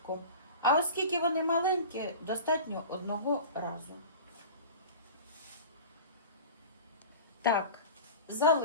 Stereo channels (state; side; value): inverted; both; correlation -0.36